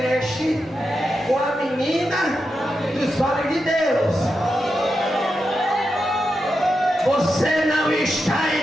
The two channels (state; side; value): normal; both; correlation 0.87